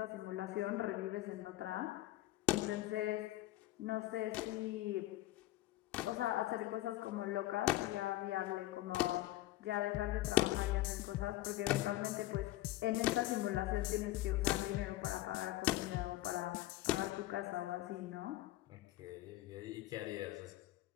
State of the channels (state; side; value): quieter; right; 16.4 dB